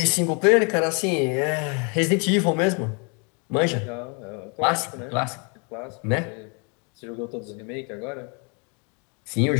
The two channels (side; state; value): right; quieter; 35.1 dB